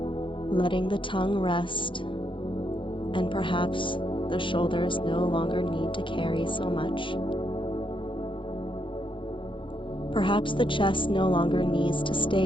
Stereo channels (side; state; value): right; late; 0.24 ms